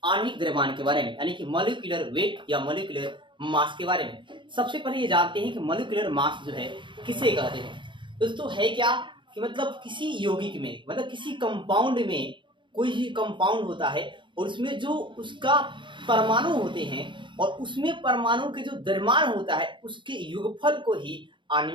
आणविक द्रव्यमान के बारे में, यानी कि मॉलिक्यूलर वेट या मॉलिक्यूलर मास के बारे में। सबसे पहले ये जानते हैं कि मॉलिक्यूलर मास जो है किसे कहते हैं। दोस्तों है क्या कि मतलब किसी यौगिक में, मतलब किसी कंपाउंड में कोई भी कंपाउंड होता है और उसमें जो उसका परमाणु होते हैं और उसमें परमाणु के जो द्रव्यमान होता है उसके योगफल को ही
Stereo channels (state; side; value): late; left; 0.23 ms